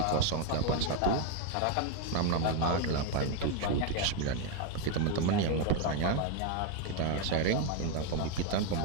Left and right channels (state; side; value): different; both; correlation 0.01